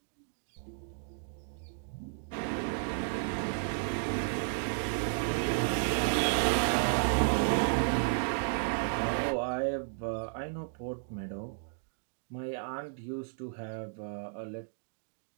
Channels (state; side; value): silent; left; digital silence